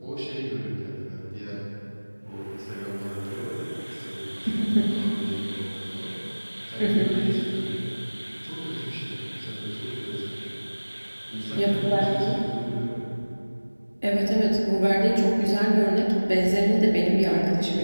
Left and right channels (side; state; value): both; inverted; correlation -1.00